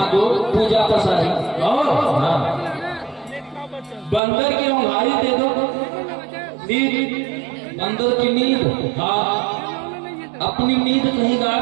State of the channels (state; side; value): drops out; left; at 4.2 s